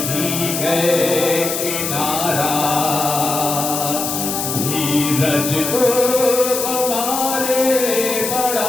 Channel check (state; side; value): noise; left; hiss, 3 dB below the sound